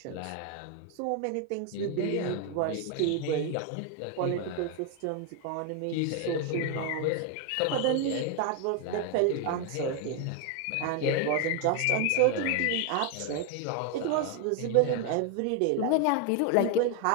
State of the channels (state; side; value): different; both; correlation 0.01